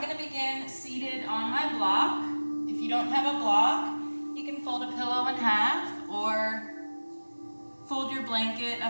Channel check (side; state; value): both; inverted; correlation -1.00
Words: going to begin seated on my block. If you don't have a block, you can fold a pillow in half or fold your blanket a